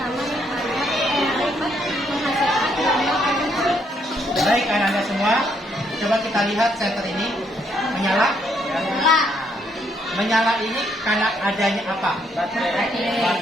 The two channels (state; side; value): normal; both; correlation 0.72